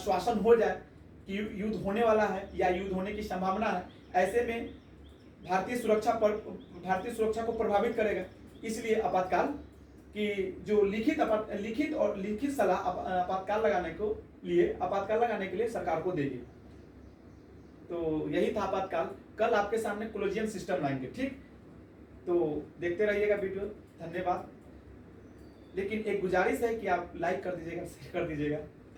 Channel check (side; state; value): both; identical; correlation 1.00